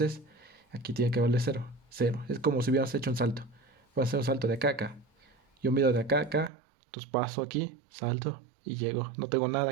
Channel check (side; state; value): left; drops out; at 6.5 s